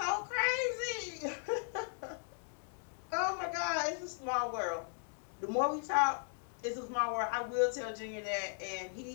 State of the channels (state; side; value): silent; right; 53 dB below the other